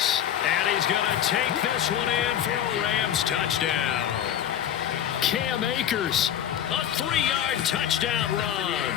And he's going to take this one in for a Rams touchdown. Cam Akers, a 3-yard touchdown run.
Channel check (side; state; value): right; quieter; 10.2 dB